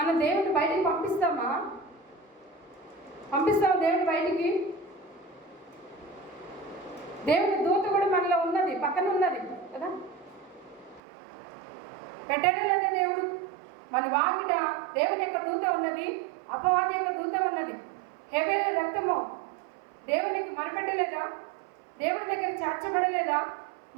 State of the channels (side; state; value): left; drops out; at 11.0 s